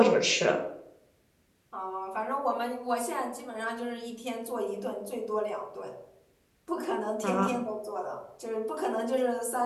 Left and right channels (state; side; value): identical; both; correlation 1.00